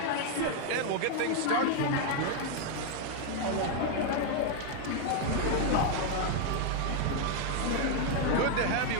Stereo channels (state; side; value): different; both; correlation 0.00